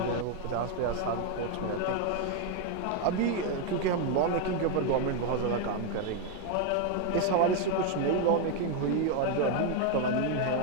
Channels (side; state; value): both; different; correlation 0.01